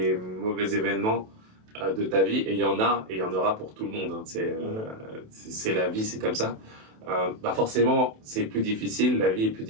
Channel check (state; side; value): late; left; 27 ms